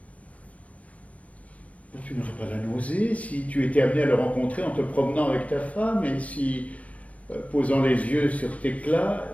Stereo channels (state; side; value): late; right; 0.067 ms